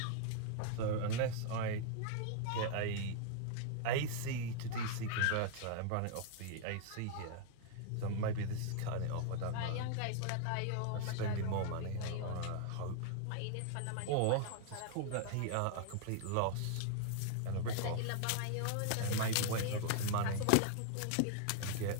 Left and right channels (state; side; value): different; both; correlation 0.00